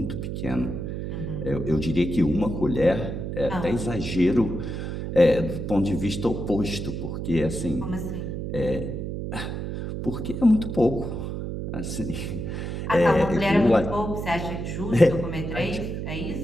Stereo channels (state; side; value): noise; right; hum, 5 dB below the sound